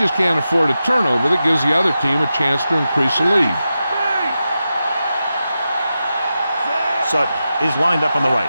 can't afford a turnover that gives the other team a chance to increase the lead. Sutton is lined up on the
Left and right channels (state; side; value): inverted; both; correlation -0.90